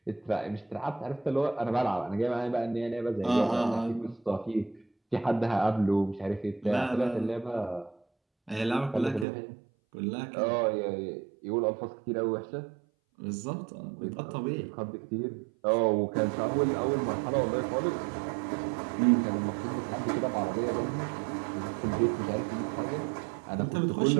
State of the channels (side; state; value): left; drops out; at 9.2 s